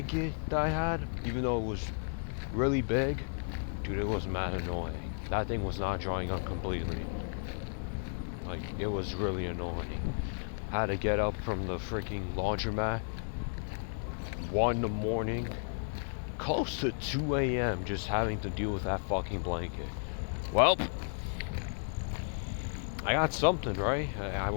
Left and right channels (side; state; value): right; silent; digital silence